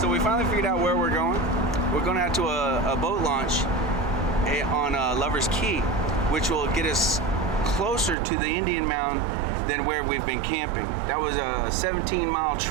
So we finally figured out where we're going. We're going out to a boat launch on Lover's Key, which will get us closer to the Indian Mound than where we've been camping. That was a 17-mile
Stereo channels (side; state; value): left; drops out; at 8.2 s